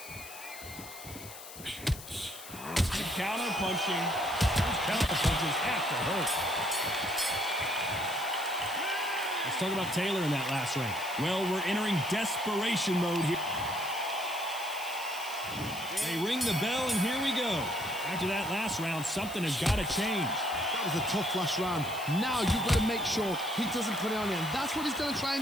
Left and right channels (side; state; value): left; noise; hiss, 14 dB below the sound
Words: Counter punching. Those counter punches have to hurt. Let's talk about Taylor in that last round. Well, we're entering desperation mode here. They ring the bell, and here we go. After that last round, something has got to change. That was a tough last round. Now you've got to make sure he doesn't put it on him. That's what he's going to try and